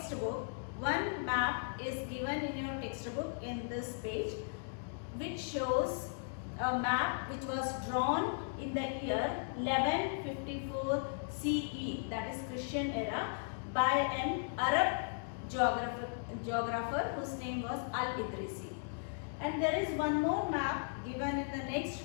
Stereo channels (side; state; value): right; silent; digital silence